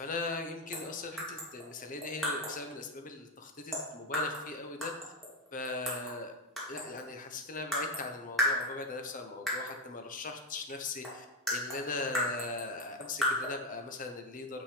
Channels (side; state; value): both; normal; correlation 0.09